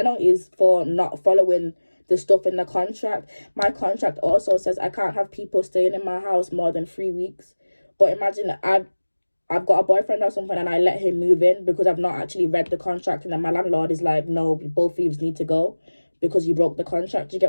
for not following the stuff in the contract. My contract also says I can't have people staying in my house more than 3 weeks. But imagine I've got a boyfriend or something and I let him move in because I've not actually read the contract, and then my landlord is like, no, both of you need to go because you broke the contract. You get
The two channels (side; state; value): both; inverted; correlation -1.00